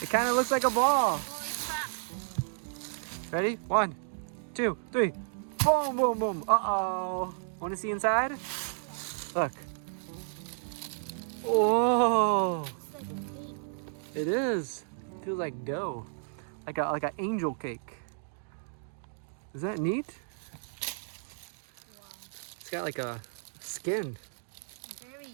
It kind of looks like a ball. Ready? 1, 2, 3. Boom, boom, boom. Uh-oh. Want to see inside? Look. Oh. It is. Feels like dough. Like an angel cake. Is that neat? Wow. It's got like a skin. Very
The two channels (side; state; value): left; silent; digital silence